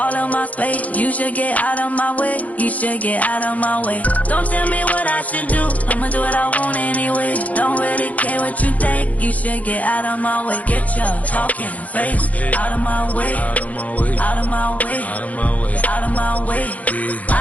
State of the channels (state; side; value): late; right; 0.071 ms